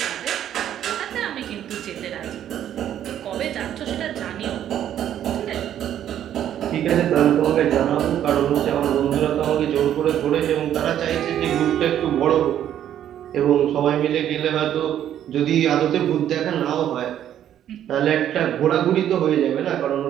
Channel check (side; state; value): left; quieter; 10.7 dB